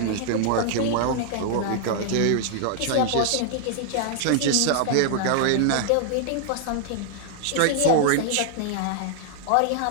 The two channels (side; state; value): both; different; correlation -0.01